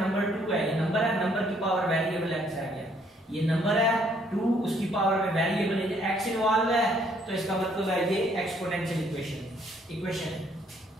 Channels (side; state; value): both; normal; correlation 0.66